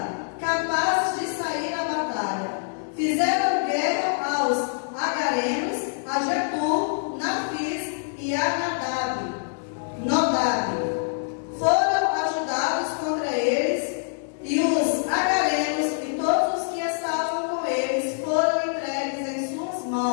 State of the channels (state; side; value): silent; right; 62 dB below the other